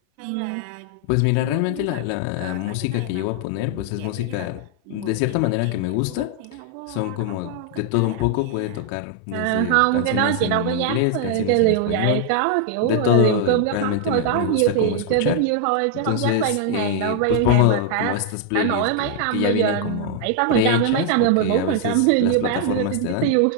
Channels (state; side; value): different; both; correlation 0.00